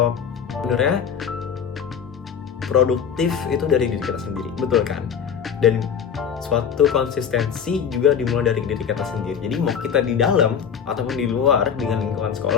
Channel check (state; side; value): quieter; right; 7.4 dB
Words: sebenarnya produktif itu dari diri kita sendiri, betul kan? Dan suatu konsistensi juga dimulai dari diri kita sendiri. Jadi mau kita di dalam ataupun di luar dengan lingkungan